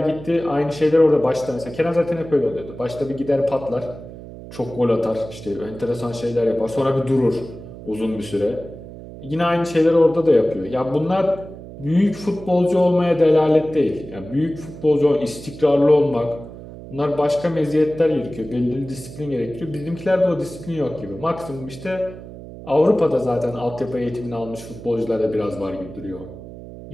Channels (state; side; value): noise; right; hum, 14 dB below the sound